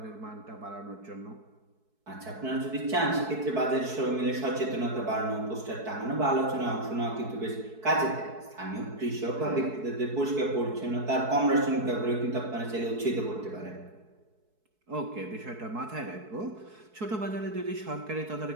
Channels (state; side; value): late; left; 4.6 ms